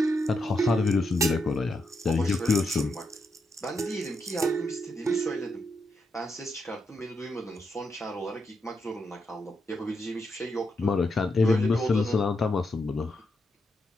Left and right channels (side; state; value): both; normal; correlation 0.82